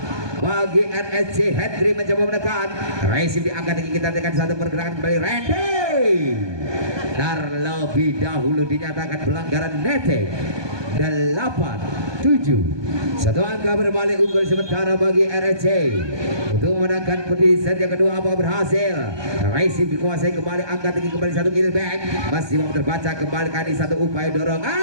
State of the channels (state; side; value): late; left; 1.2 ms